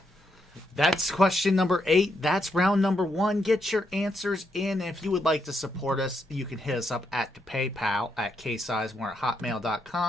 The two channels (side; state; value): both; normal; correlation 0.79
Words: That's question number 8. That's round number 1. Get your answers in. If you would like to support us, you can hit us up at the PayPal at